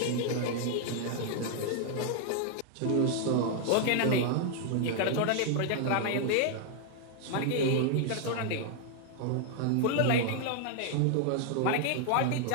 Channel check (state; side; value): different; both; correlation 0.00